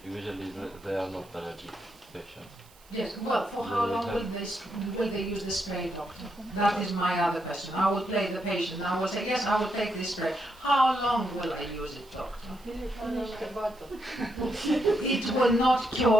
they are not allergic patients. Yes. Well, for how long will they use the spray, doctor? That is my other question. I will play the patient. I will say yes, I will take this spray. How long will I use it, doctor? Finish the bottle. It will not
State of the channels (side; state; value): right; noise; hiss, 26 dB below the sound